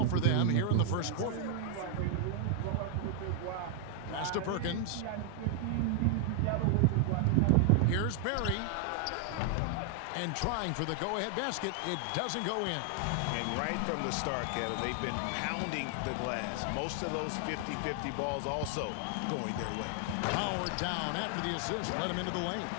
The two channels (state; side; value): different; both; correlation 0.00